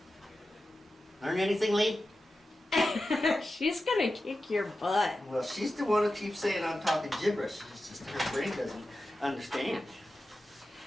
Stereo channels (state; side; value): normal; both; correlation 0.92